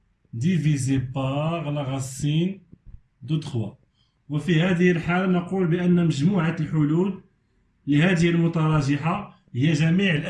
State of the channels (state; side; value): identical; both; correlation 1.00